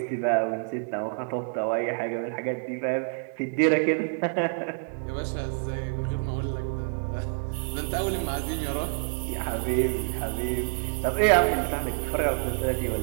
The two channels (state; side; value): silent; left; digital silence